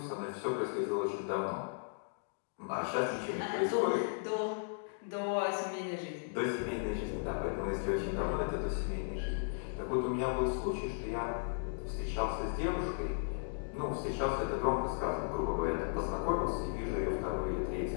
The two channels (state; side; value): silent; right; digital silence